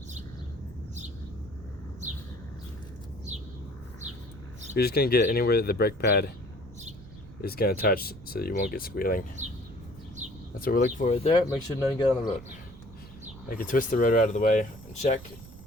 You're just going to get anywhere that the brake pad is going to touch so that you won't get squealing. That's what we're looking for right there. Make sure none get on the rotor. I can twist the rotor out of the way and check.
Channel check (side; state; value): right; noise; rumble, 17 dB below the sound